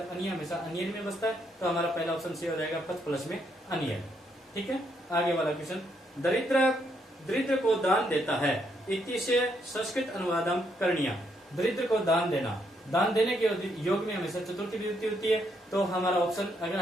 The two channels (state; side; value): normal; both; correlation 0.75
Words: अनिय हमेशा अनियन में बसता है, तो हमारा पहला ऑप्शन सी हो जाएगा पच प्लस में अनियन, ठीक है। आगे वाला क्वेश्चन, दरिद्र को दान देता है इति से संस्कृत अनुवादम करणीय, दरिद्र को दान देना, दान देने के योग में हमेशा चतुर्थी विभक्ति होती है, तो हमारा ऑप्शन अगर